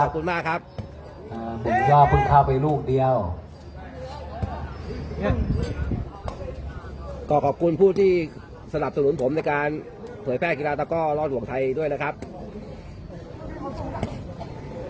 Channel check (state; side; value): identical; both; correlation 1.00